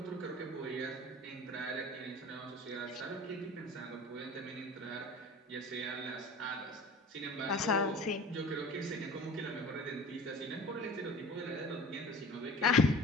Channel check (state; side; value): normal; both; correlation 0.40